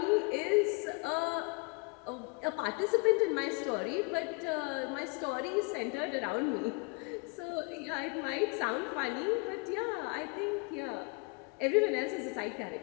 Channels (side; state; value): right; quieter; 31.6 dB